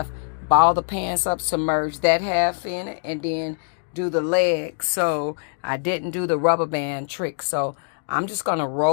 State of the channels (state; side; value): silent; right; digital silence